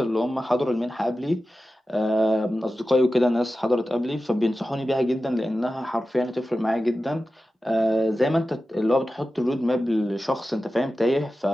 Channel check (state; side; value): normal; both; correlation 0.94